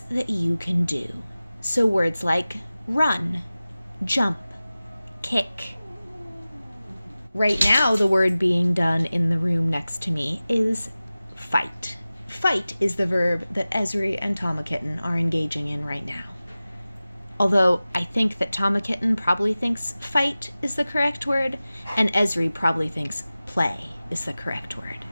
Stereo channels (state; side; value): inverted; both; correlation -0.97